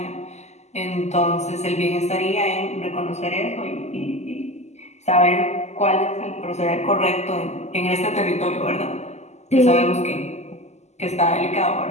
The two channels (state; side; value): late; right; 0.33 ms